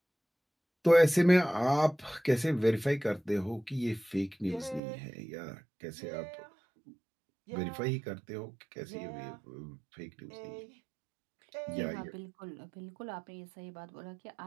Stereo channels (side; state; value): left; drops out; at 4.8 s